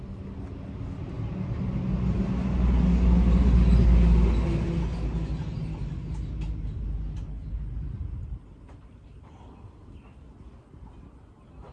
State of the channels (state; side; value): identical; both; correlation 1.00